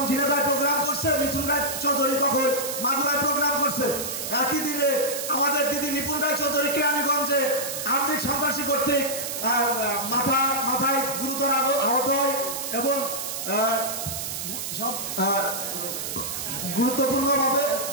ঝিনাইদহে প্রোগ্রাম করছে, মিথুন রায় চৌধুরী তখন মাগুরায় প্রোগ্রাম করছে। একই দিনে আমাদের দিদি নিপুণ রায় চৌধুরী কেরানীগঞ্জে আর্থিক সন্ত্রাসী কর্তৃক মাথায় গুরুতর আহত হয় এবং সব গুরুত্বপূর্ণভাবে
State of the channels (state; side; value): noise; right; hiss, 5 dB below the sound